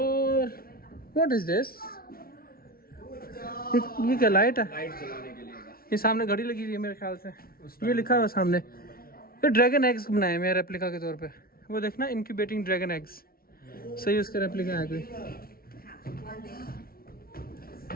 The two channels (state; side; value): late; right; 0.43 ms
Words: व्हाट इज दिस? ये क्या लाइट है? ये सामने घड़ी लगी हुई है मेरे ख्याल से, ये लिखा हुआ सामने। ये ड्रैगन एग्स बनाए मेरे रेप्लिका के तौर पे, वो देखना इनक्यूबेटिंग ड्रैगन एग्स। सही उसका रेप्लिका है कोई।